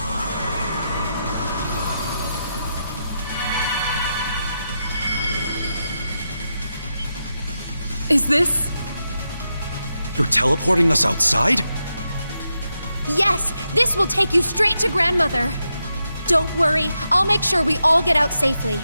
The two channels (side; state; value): both; inverted; correlation -0.86